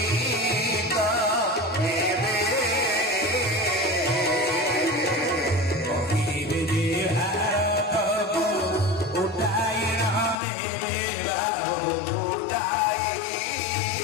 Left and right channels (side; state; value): right; drops out; at 10.4 s